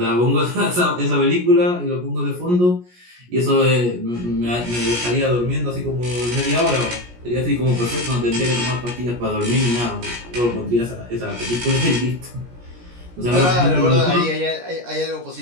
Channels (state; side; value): late; left; 17 ms